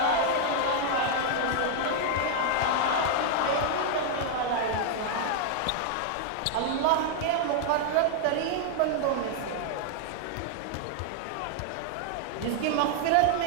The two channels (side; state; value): both; different; correlation 0.00